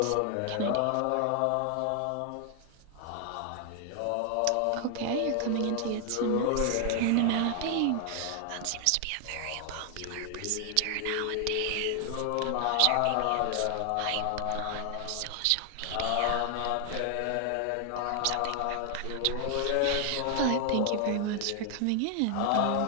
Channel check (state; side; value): different; both; correlation 0.00